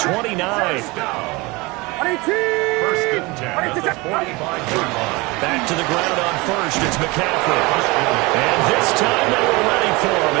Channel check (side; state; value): left; quieter; 24.3 dB